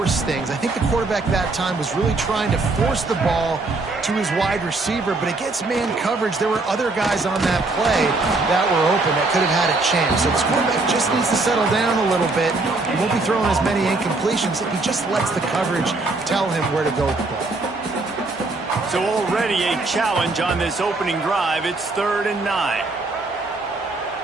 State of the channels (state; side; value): quieter; left; 3.3 dB